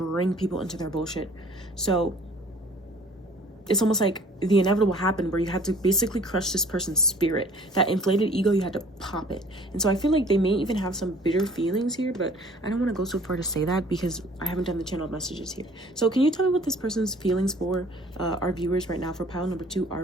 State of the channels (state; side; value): normal; both; correlation 0.52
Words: people into their bullshit. So it's almost like the inevitable happened where you had to basically crush this person's spirit. That inflated ego, you had to pop it. And so I feel like they may even have some bitter feelings here, but I don't want to go so far to say that because I haven't done the channel messages here. So can you tell me what this person's feelings for our viewers right now, for pile number 2,